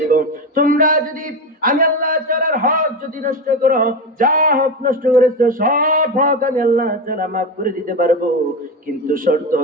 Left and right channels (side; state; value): both; normal; correlation 0.18